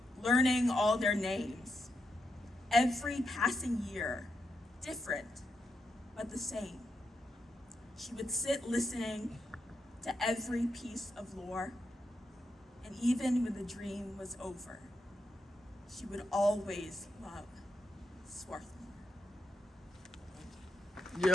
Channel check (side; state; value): both; normal; correlation 0.84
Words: learning all their names. Every passing year, different, but the same. She would sit listening to every piece of lore, and even when the dream was over, she would always love Swarthmore.